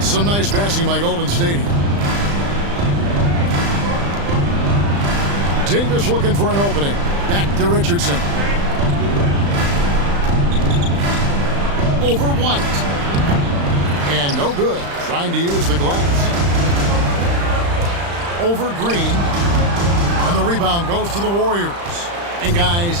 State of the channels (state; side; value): late; left; 35 ms